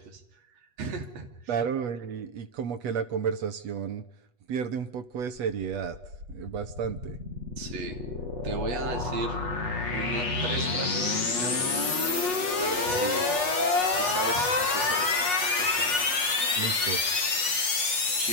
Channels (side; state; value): left; late; 8.2 ms